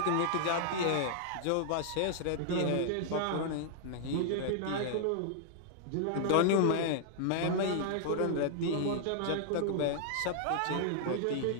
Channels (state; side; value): different; both; correlation -0.01